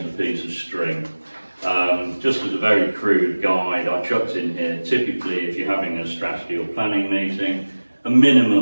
a piece of string. Just as a very crude guide, I chucked in here, typically if you're having a strategy or planning meeting, a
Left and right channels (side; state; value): both; inverted; correlation -1.00